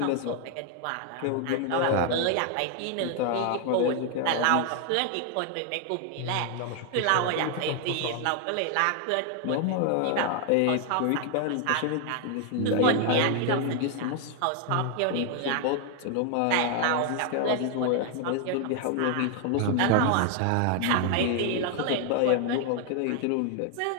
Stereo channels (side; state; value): both; different; correlation 0.00